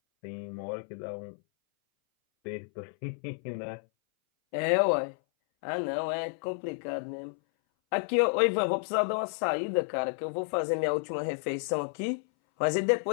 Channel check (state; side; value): silent; right; 57 dB below the other